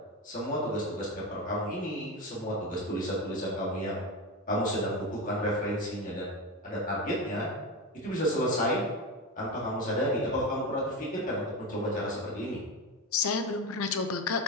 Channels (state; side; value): normal; both; correlation 0.19